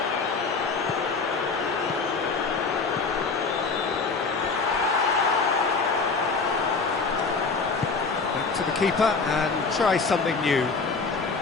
Back to the keeper and try something new.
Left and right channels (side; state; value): right; quieter; 4.5 dB